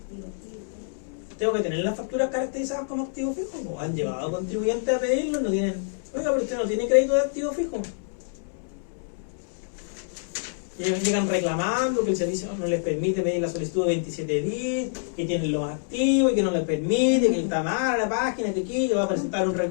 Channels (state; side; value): silent; right; digital silence